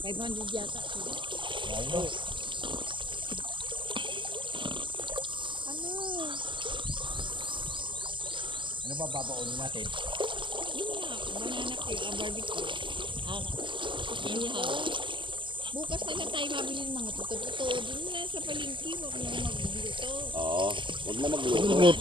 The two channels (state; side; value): late; left; 0.24 ms